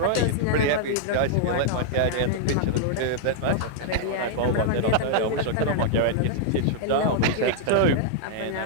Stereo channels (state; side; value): different; both; correlation -0.01